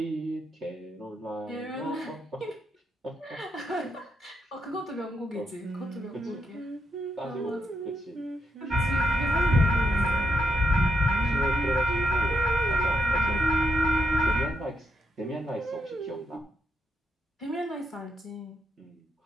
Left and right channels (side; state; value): both; normal; correlation 0.80